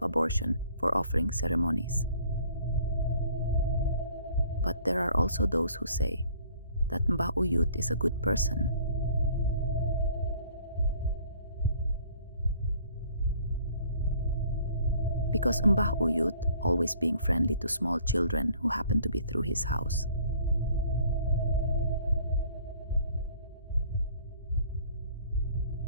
abortion, for offering ceremonies. But there are also those who say that Mbah Uyut is a good person. Because Mbah Uyut, always being friendly to small children who happen to be through his house.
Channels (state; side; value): inverted; both; correlation -0.56